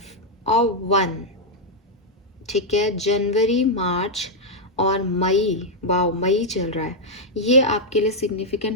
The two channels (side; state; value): both; normal; correlation -0.03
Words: और 1। ठीक है, जनवरी, मार्च और मई, वाओ मई चल रहा है, ये आपके लिए